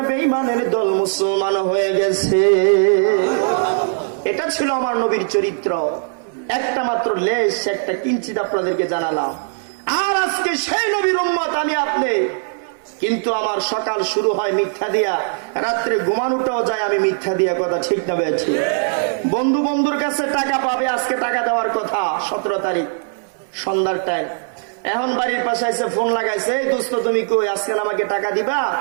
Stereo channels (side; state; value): left; silent; 61 dB below the other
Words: বেঈমানের দল মুসলমান হয়ে গেছে। এটা ছিল আমার নবীর চরিত্র। একটা মাত্র লেশ, একটা কিঞ্চিত আপনাদেরকে জানালাম। আর আজকে সেই নবীর উম্মত আমি আপনি, কিন্তু আমার সকাল শুরু হয় মিথ্যা দিয়া, রাত্রে ঘুমানোটাও যায় আমি মিথ্যা দিয়া। কথা ঠিক না বেঠি? বন্ধু বন্ধুর কাছে টাকা পাবে, আজকে টাকা দেওয়ার কথা 17 তারিখ সন্ধ্যার টাইম। এখন বাড়ির পাশে এসে ফোন লাগাইছে, এই দোস্ত তুমি কই, আজকে আমাকে টাকা দিবা?